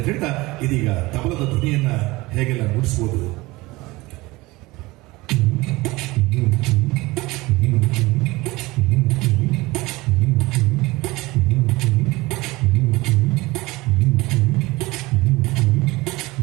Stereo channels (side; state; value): left; quieter; 21.3 dB